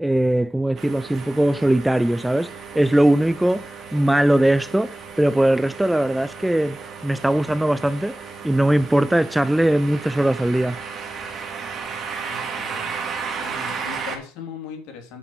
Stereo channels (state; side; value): normal; both; correlation 0.97